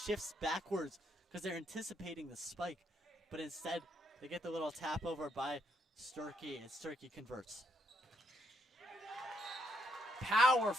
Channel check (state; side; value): normal; both; correlation 0.75